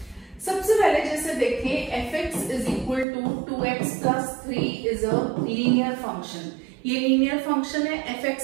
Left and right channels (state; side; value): drops out; left; at 3.1 s